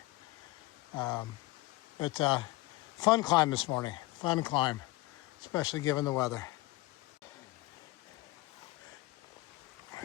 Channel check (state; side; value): quieter; right; 20.2 dB